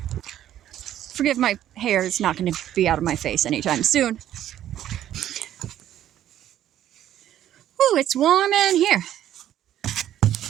Forgive my hair, it's not going to be out of my face anytime soon. Ooh, it's warm in here.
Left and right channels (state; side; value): quieter; left; 11.7 dB